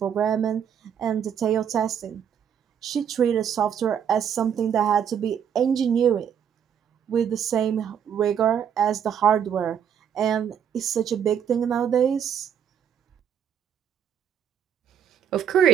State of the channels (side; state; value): left; quieter; 8.5 dB